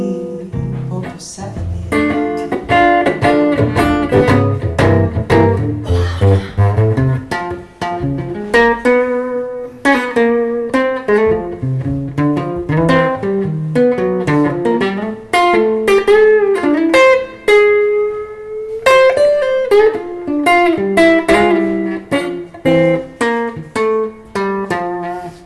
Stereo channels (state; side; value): identical; both; correlation 1.00